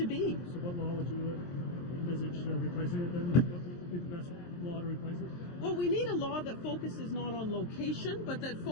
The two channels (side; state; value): right; late; 23 ms